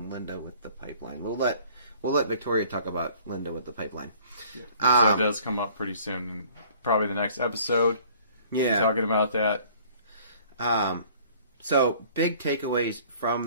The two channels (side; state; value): both; inverted; correlation -0.53